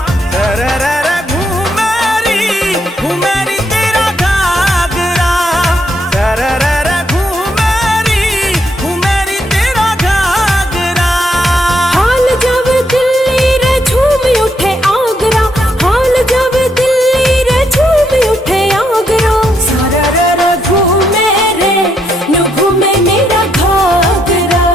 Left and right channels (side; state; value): both; normal; correlation 0.76